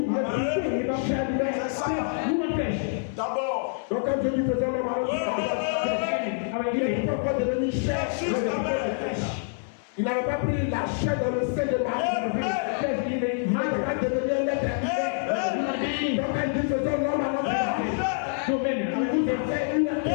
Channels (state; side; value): silent; right; 61 dB below the other